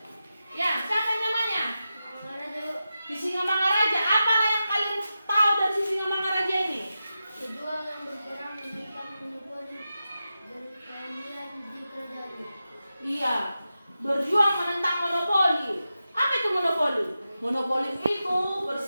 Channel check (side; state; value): both; inverted; correlation -0.91